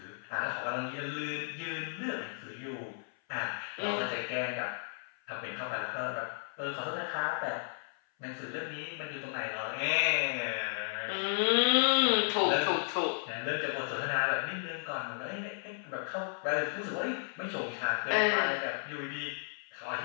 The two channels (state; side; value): silent; right; 55 dB below the other